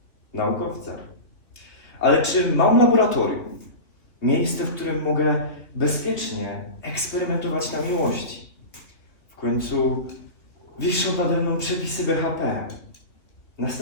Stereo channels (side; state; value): right; late; 2.9 ms